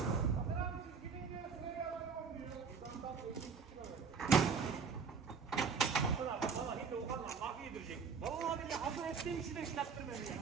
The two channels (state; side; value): quieter; left; 5.7 dB